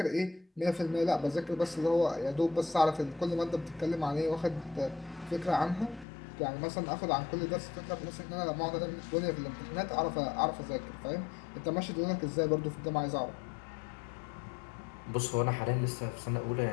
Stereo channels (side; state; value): right; drops out; at 6.1 s